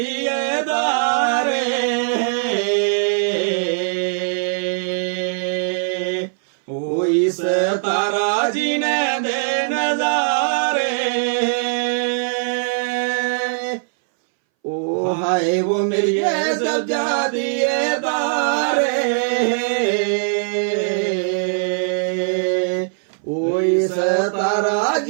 दारे, ओ इस तारा जी ने दे नजारे, ओ हाय वो मेरी सजादिए दारे, ओ इस तारा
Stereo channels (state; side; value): silent; left; 62 dB below the other